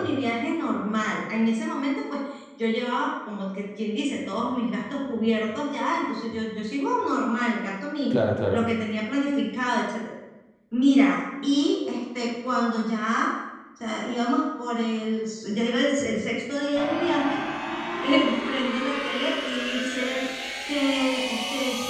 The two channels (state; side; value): identical; both; correlation 1.00